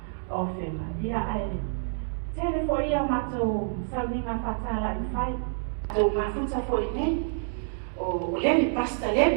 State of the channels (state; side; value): silent; left; digital silence